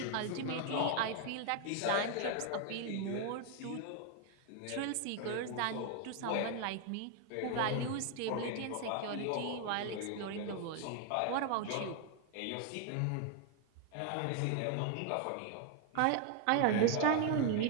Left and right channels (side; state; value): both; different; correlation 0.01